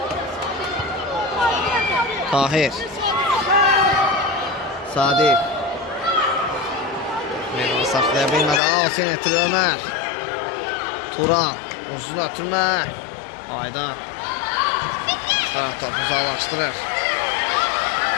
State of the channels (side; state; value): right; drops out; at 8.6 s